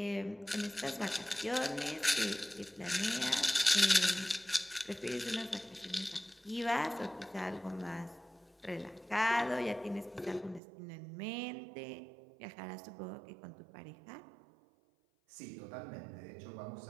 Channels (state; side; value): drops out; left; at 10.6 s